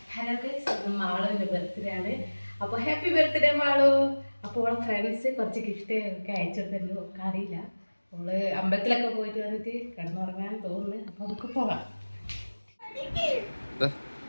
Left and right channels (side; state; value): both; inverted; correlation -1.00